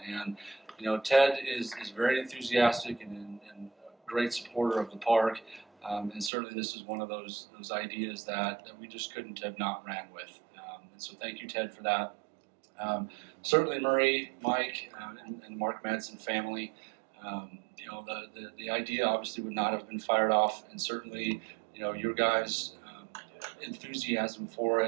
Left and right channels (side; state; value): left; drops out; at 6.3 s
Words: And you know, Ted is very enthusiastic and a great supporter of the park, and certainly this is one of those ideas that we just couldn't have not ran with. And so thank you, Ted, for that. Certainly Marie, Mike, and Mark Madsen family. You know, the idea obviously would not have been fired off, and certainly, you know, your guys' enthusiasm for